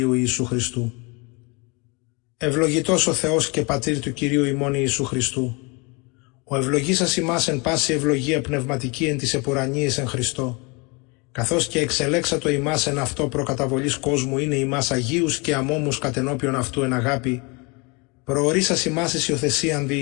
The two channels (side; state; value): right; quieter; 29.3 dB